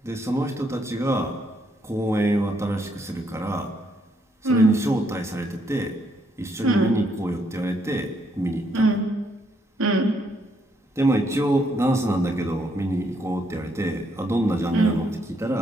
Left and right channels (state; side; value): normal; both; correlation 0.73